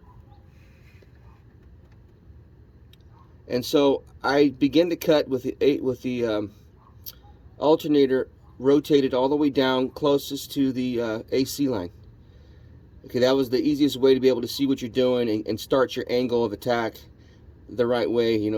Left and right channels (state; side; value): identical; both; correlation 1.00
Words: And so I begin to cut with the alternator rotated all the way down closest to the AC line. Okay, that was the easiest way to be able to see what you're doing and start your angle of attack the right way.